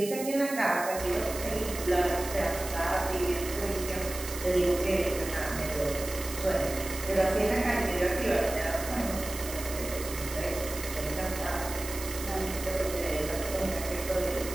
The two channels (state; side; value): noise; right; hiss, 9 dB below the sound